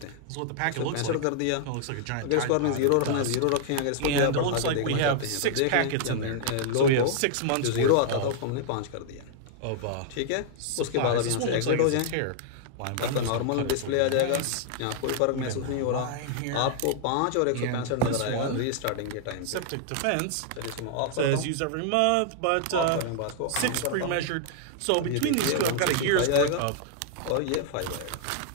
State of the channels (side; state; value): both; different; correlation -0.01